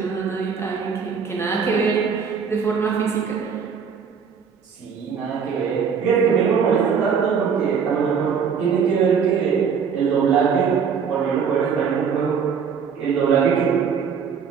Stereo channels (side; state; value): left; quieter; 6.5 dB